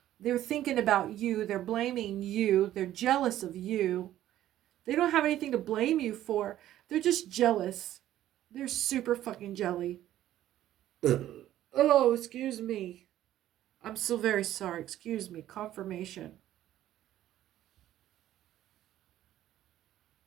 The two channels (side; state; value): left; quieter; 13.0 dB